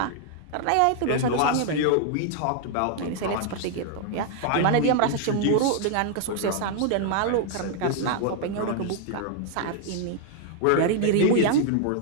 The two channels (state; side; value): different; both; correlation 0.00